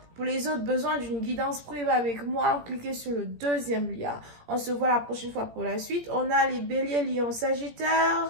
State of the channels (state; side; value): late; left; 17 ms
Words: Pour les autres besoins d'une guidance privée avec moi, cliquez sur le deuxième lien. On se voit la prochaine fois pour la suite. On a les béliers, lions,